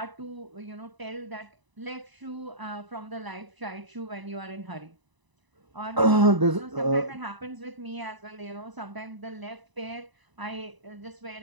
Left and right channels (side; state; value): left; late; 1.0 ms